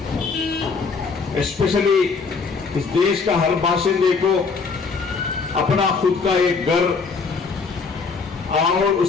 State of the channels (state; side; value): quieter; right; 4.9 dB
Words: स्पेशली इस देश का हर बाशिंदे को अपना खुद का एक घर और